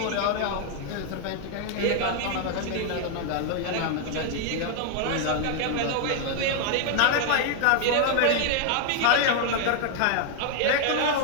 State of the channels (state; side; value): different; both; correlation 0.00